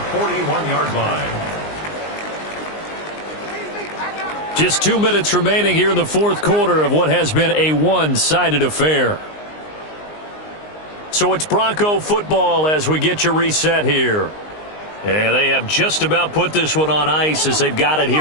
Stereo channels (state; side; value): late; right; 19 ms